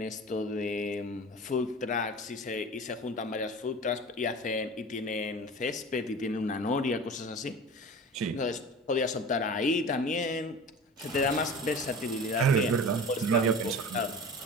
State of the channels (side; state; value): both; normal; correlation 0.36